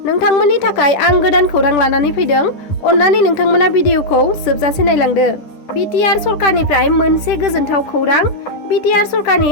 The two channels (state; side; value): late; right; 10 ms